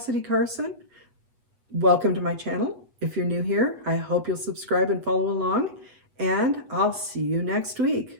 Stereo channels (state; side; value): late; left; 8.1 ms